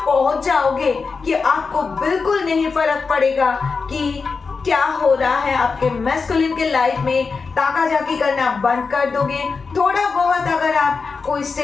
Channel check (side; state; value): right; quieter; 4.8 dB